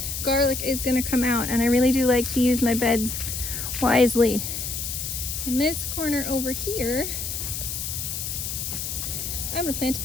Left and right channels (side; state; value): left; noise; hiss, 4 dB below the sound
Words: garlic is going to come out, and I really do like to use my beds wisely, in this corner over here I'm going to plant